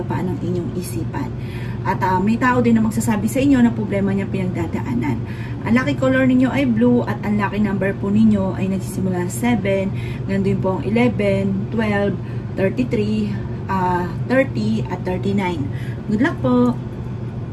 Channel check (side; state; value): both; identical; correlation 1.00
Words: ng inyong isipan. At may tao din na magsasabi sa inyo na problema niya pinagdadaanan. Ang lucky color ninyo ay blue at ang lucky number po ninyo ay nagsisimula 7, ganun po ang 11, 12, 33, 30 at 39. Good luck po!